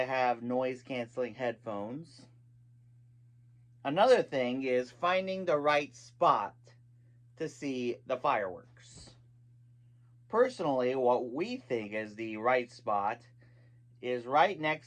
have noise canceling headphones. Another thing is finding the right spot to see the fireworks. Personally, what we think is the right spot is right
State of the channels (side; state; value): both; identical; correlation 1.00